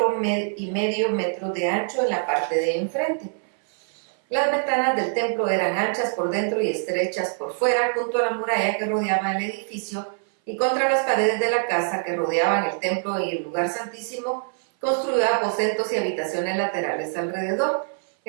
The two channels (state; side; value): silent; left; 59 dB below the other